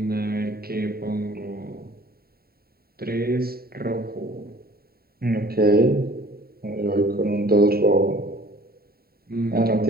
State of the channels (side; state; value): left; late; 0.45 ms